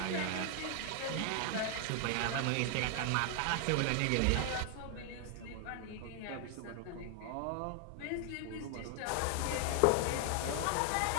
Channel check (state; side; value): different; both; correlation 0.00